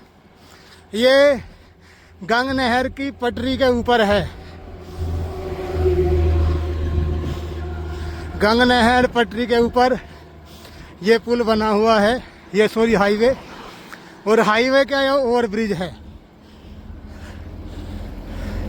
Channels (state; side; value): identical; both; correlation 1.00